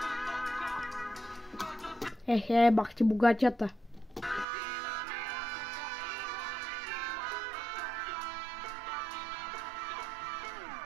Ехе, бах ти богатята.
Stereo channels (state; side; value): drops out; left; at 4.5 s